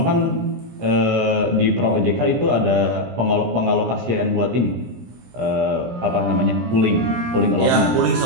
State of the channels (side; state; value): left; late; 17 ms